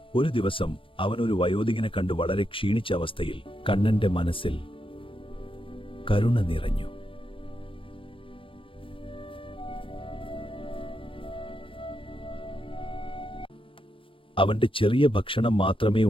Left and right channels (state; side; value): late; right; 0.25 ms